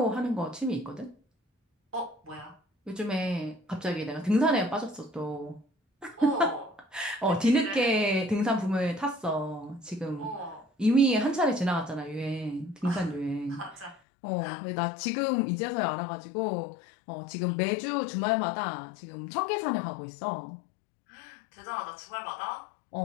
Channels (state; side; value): drops out; right; at 14.0 s